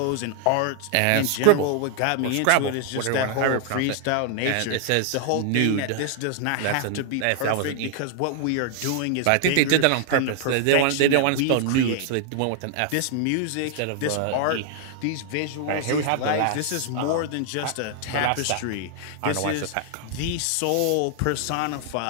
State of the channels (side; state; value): both; different; correlation 0.00